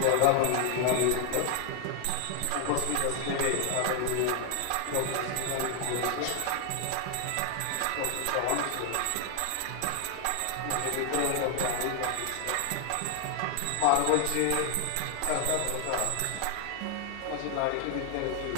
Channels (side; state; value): both; different; correlation 0.00